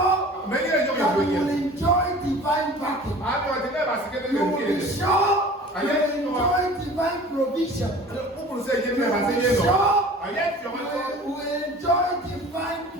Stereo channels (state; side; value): normal; both; correlation 0.43